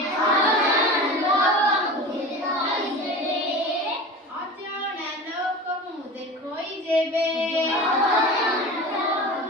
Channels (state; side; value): normal; both; correlation 0.33